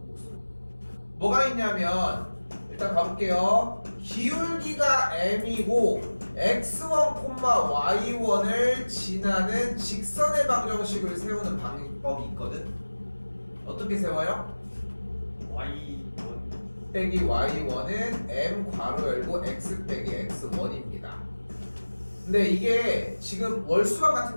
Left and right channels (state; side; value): inverted; both; correlation -1.00